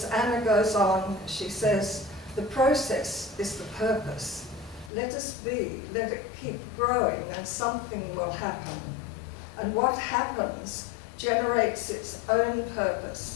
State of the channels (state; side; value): drops out; right; at 4.9 s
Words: Anna goes on, she says, the process is the purpose. Let us be, let it keep growing and something will happen. And what happens generates its own